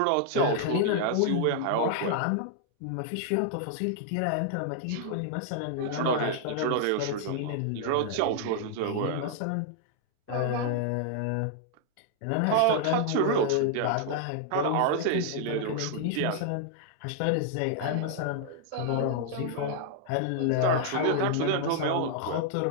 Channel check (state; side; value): different; both; correlation -0.01